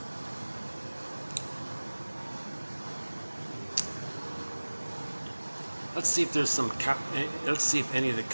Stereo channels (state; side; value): inverted; both; correlation -1.00